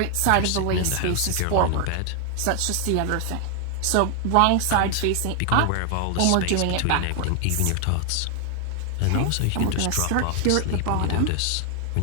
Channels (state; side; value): different; both; correlation 0.00